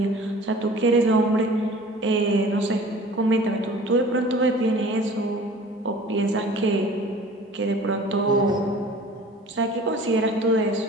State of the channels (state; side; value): normal; both; correlation 0.45